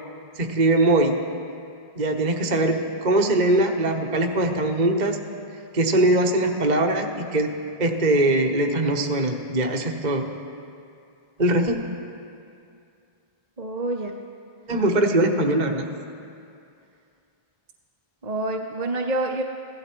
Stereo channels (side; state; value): left; late; 2.0 ms